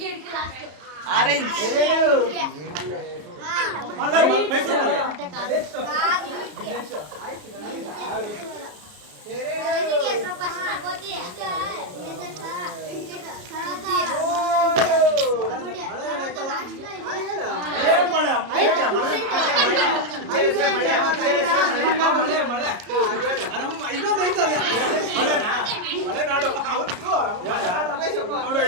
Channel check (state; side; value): late; left; 33 ms